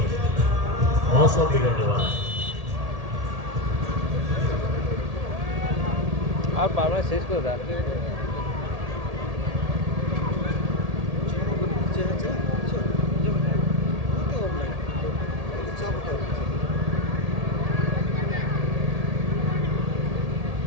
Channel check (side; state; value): left; late; 1.8 ms